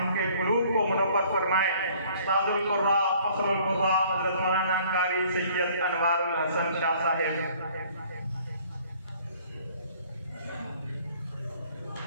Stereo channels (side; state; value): both; inverted; correlation -0.56